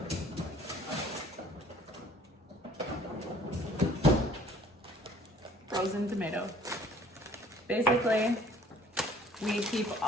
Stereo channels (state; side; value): normal; both; correlation 0.55